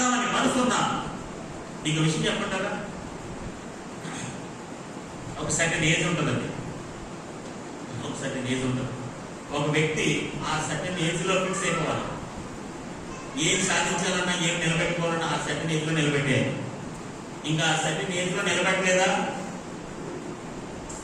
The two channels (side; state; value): both; identical; correlation 1.00